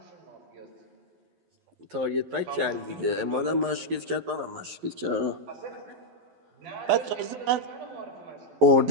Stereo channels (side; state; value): left; late; 11 ms